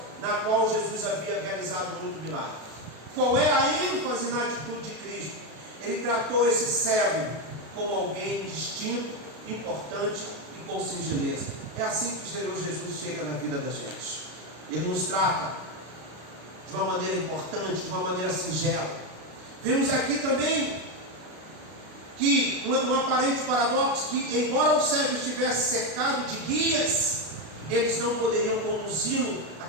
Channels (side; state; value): left; late; 32 ms